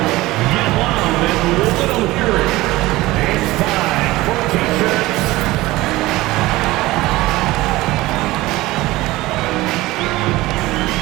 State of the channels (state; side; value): quieter; left; 18.8 dB